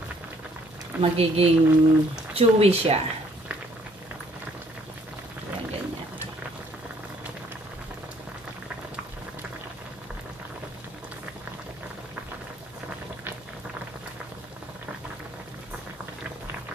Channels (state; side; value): normal; both; correlation 0.63